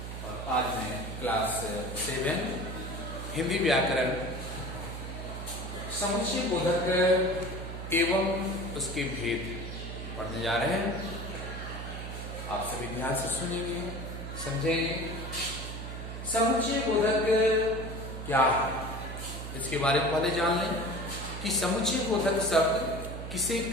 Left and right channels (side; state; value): right; noise; hum, 8 dB below the sound